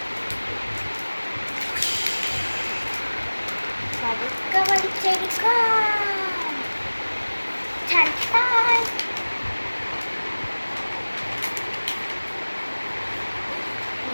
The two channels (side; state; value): both; inverted; correlation -1.00